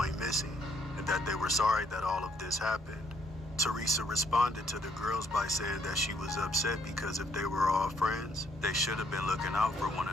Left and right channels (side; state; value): both; normal; correlation 0.69